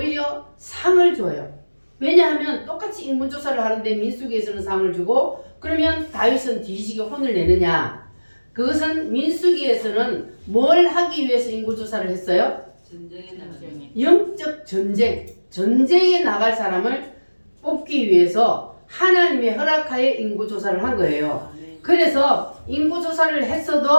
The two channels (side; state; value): both; inverted; correlation -1.00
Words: 상을 줘요. 왜냐하면 똑같이 인구조사를 하는데 민수기에서는 상을 주고 그러면 다윗은 뒤지게 혼을 내느냐. 그것은 민수기에서는 뭘 하기 위해서 인구조사를 했어요? 영적 전쟁에 나갈 사람을 뽑기 위해서 하나님의 허락하에 인구조사를 한 거예요. 그래서 인구조사를